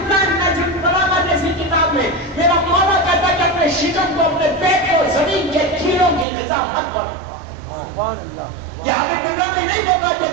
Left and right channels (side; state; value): left; drops out; at 6.2 s